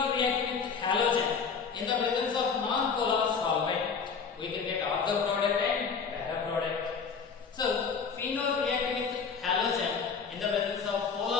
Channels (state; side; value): quieter; right; 5.7 dB